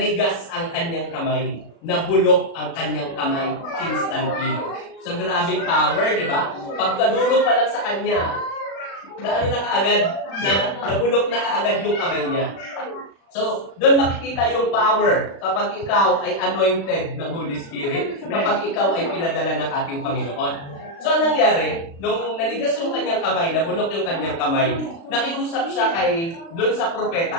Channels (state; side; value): late; right; 36 ms